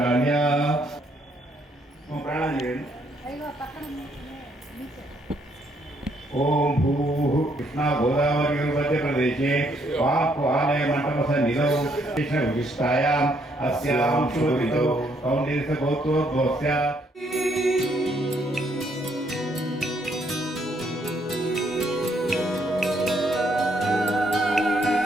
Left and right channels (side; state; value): both; normal; correlation 0.71